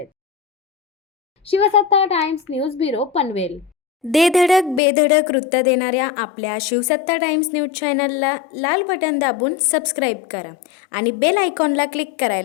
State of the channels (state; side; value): drops out; right; at 4.8 s